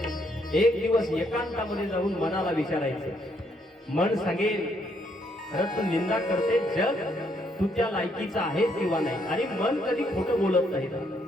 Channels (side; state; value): both; normal; correlation 0.72